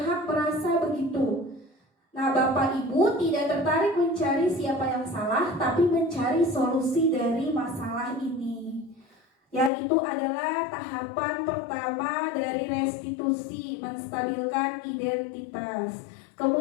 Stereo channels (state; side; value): drops out; right; at 9.7 s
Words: merasa begitu. Nah, Bapak Ibu tidak tertarik mencari siapa yang salah, tapi mencari solusi dari masalah ini. Yang itu adalah tahapan pertama dari restitusi, menstabilkan identitas.